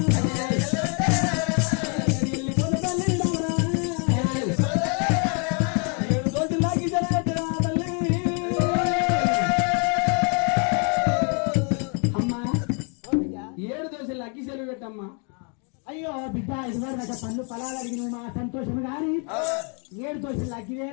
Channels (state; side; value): quieter; right; 37.8 dB